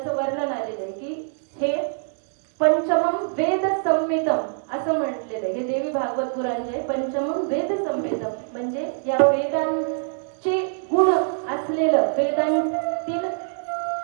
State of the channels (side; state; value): left; silent; digital silence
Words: वर्णन आलेलं आहे की हे पंचमम वेद संहितम असं म्हटलेलं आहे. हे देवी भागवत पुराण जे पंचमम वेद संहितम म्हणजे या वेदांचे गुण असलेलं,